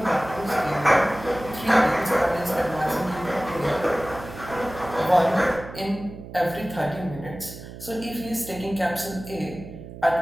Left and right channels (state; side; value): noise; right; hum, 13 dB below the sound